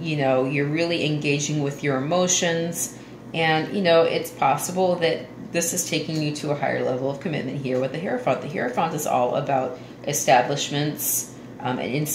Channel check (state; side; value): identical; both; correlation 1.00